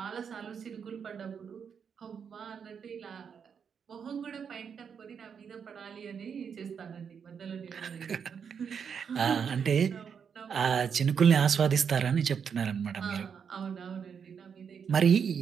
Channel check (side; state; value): left; quieter; 7.0 dB